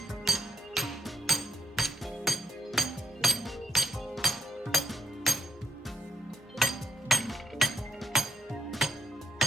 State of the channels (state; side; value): normal; both; correlation 0.75